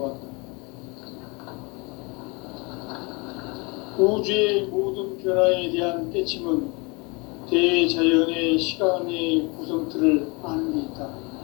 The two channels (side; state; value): right; quieter; 28.6 dB